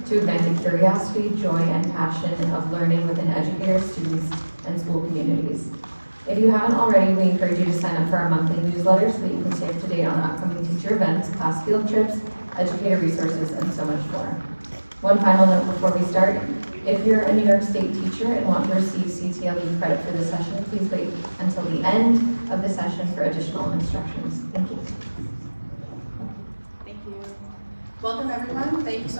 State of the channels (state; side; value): inverted; both; correlation -1.00